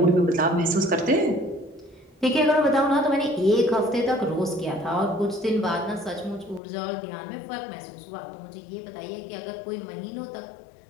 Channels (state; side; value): drops out; right; at 6.6 s